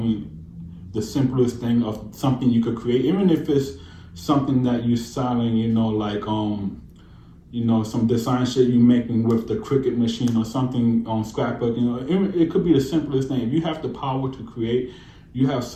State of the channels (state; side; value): identical; both; correlation 1.00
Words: the simplest thing of something you could create, even if it's something that you're selling, you know, like, you know, some design shit you making with the Cricut machine or something on scrapbook, you know, it could be the simplest thing. If you have the power to create, you have